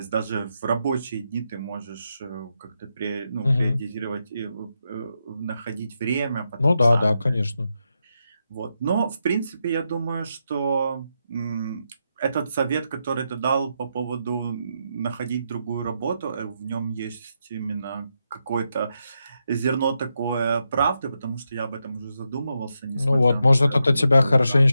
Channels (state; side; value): inverted; both; correlation -0.84